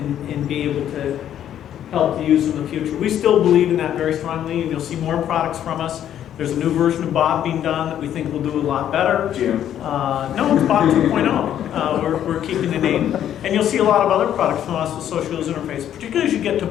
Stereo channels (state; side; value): quieter; right; 10.6 dB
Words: be able to help the user in the future. We still believe in that very strongly, and you'll see more products from us. There's a new version of Bob being done that we think will do a lot better. Jim. No, it's Bob 2.0. We're keeping the name. And you'll see a lot of other products from us with social user interface, particularly as you get to